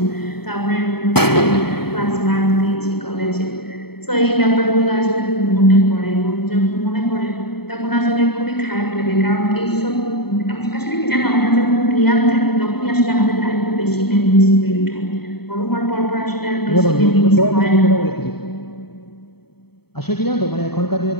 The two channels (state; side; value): late; right; 0.96 ms